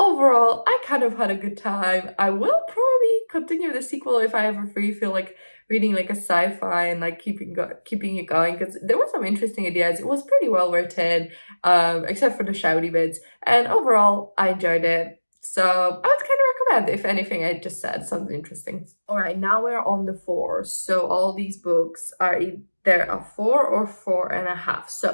I kind of had a good time. I will probably continue the sequel if I ever feel like reading like a sci-fi and like keeping it going, because there were some interesting ideas. It was pretty well written, except for the shouty bits. And overall, I enjoyed it. So I would kind of recommend, if anything I just said sounds interesting. All right, now we're on the 4s. So all these books are either a 4 or 4.5.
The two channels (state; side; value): inverted; both; correlation -1.00